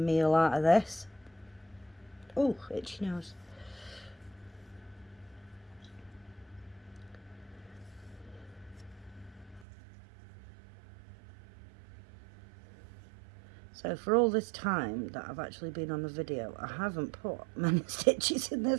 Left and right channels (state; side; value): drops out; left; at 9.7 s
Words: out of this. Oh, itchy nose. So for all this time that I've actually been on the video, I haven't put many stitches in